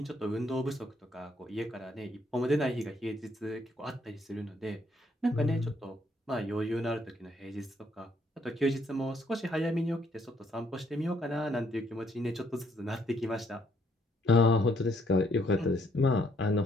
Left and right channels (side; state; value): both; normal; correlation 0.69